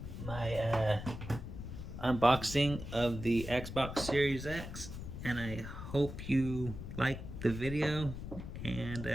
my unboxing of the Xbox Series X, and I hope you like the video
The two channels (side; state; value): left; noise; rumble, 9 dB below the sound